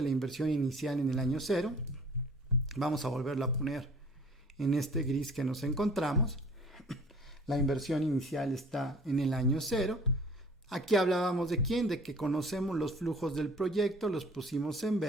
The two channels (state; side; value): normal; both; correlation 0.50